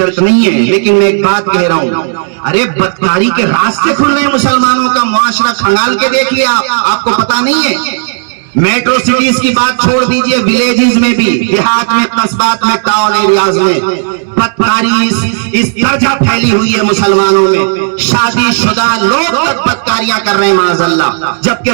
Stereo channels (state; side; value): silent; left; digital silence